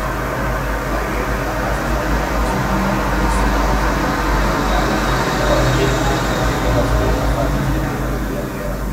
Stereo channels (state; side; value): identical; both; correlation 1.00